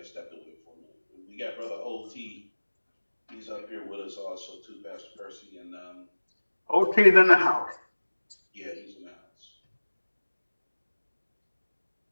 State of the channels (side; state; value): both; inverted; correlation -1.00